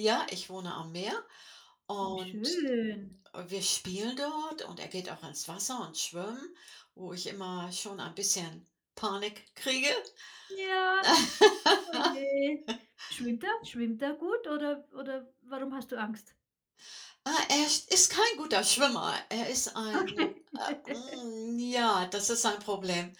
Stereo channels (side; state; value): both; identical; correlation 1.00